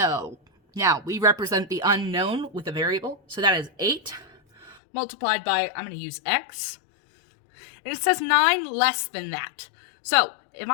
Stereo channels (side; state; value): right; drops out; at 4.8 s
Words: Now, we represent the unknown with a variable, so that is 8 multiplied by, I'm going to use x, and it says 9 less than that. So, if